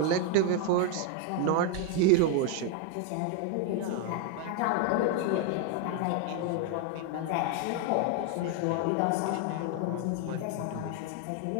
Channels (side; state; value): both; different; correlation 0.01